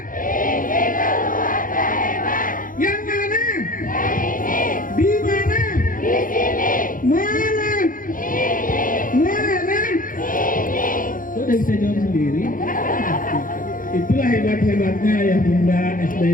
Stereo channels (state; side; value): late; right; 0.40 ms